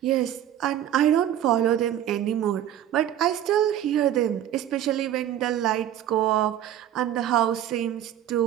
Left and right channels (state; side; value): quieter; left; 11.2 dB